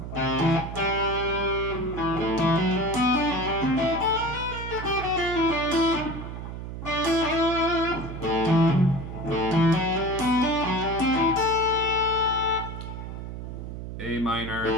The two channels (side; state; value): right; noise; hum, 8 dB below the sound